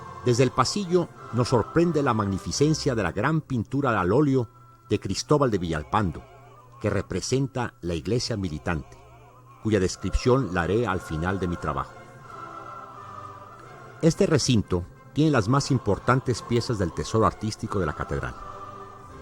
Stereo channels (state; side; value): identical; both; correlation 1.00